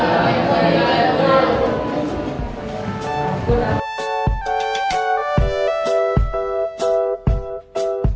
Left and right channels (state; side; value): identical; both; correlation 1.00